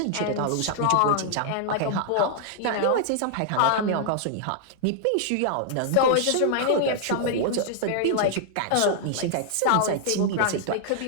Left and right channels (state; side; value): different; both; correlation -0.01